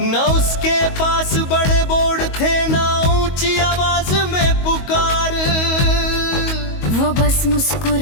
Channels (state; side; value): late; right; 22 ms